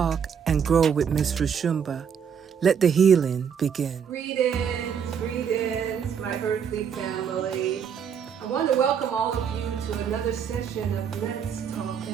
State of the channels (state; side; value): quieter; left; 7.5 dB